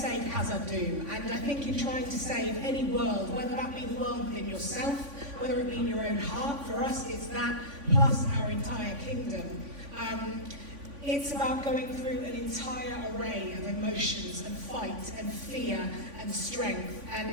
Hazeldine, and I think in trying to save any world, whether that be the world within yourself, whether it be in your own heart, for us it's that, plus our entire kingdom. It's about going through an entire array of emotions and fight and fear and strength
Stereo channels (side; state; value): left; late; 3.5 ms